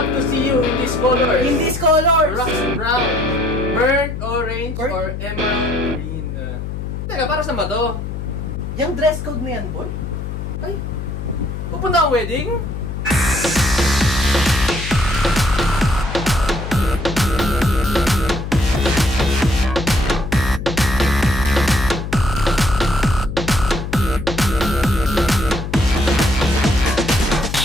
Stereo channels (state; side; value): noise; left; hum, 6 dB below the sound